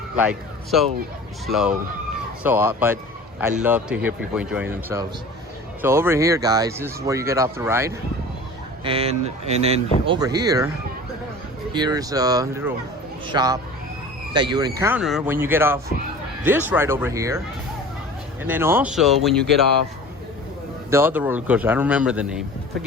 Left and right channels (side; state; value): both; normal; correlation 0.40